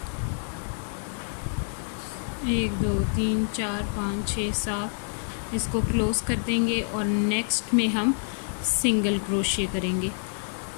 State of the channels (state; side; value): silent; right; 60 dB below the other